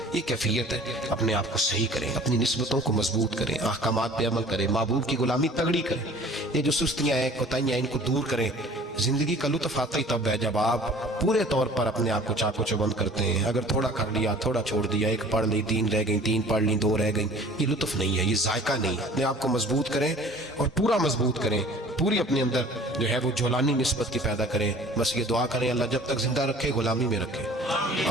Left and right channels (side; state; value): both; normal; correlation 0.48